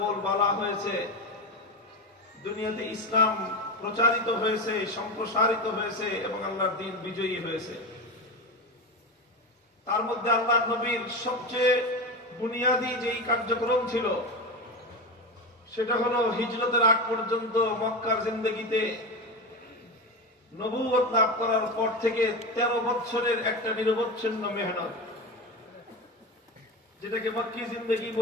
হয়েছে, দুনিয়াতে ইসলাম প্রচারিত হয়েছে, সম্প্রসারিত হয়েছে এবং আল্লাহর দ্বীন বিজয়ী হয়েছে। তার মধ্যে আল্লাহ নবীর সবচেয়ে বুনিয়াদী যেই কার্যক্রম ছিল সেটা হলো হিজরতের আগ পর্যন্ত মক্কার জিন্দেগিতে নবুয়ত লাভ করার পর থেকে 13 বছরের একটা নিরবচ্ছিন্ন মেহনত, যেটাকে মক্কি জিন্দেগি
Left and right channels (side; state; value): both; normal; correlation 0.20